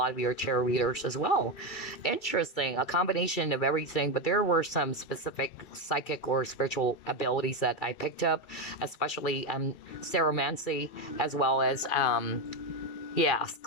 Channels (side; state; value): right; late; 2.3 ms